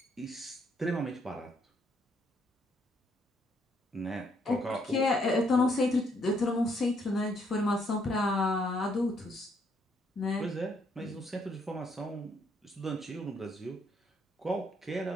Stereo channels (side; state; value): both; normal; correlation 0.71